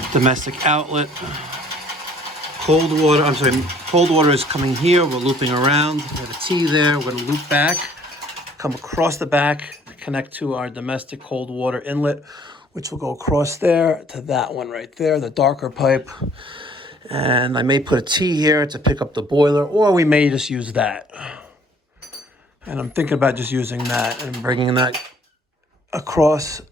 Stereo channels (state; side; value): normal; both; correlation 0.58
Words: domestic outlet. Cold water is coming here. We're looping around. We have a T there. We're going to loop back, come across the back, connect to our domestic cold water inlet, which will go across there to that one right there, the darker pipe. And I may put a T here to pick up the boiler, or we may just use that. And I'm thinking about just using that and bringing that across,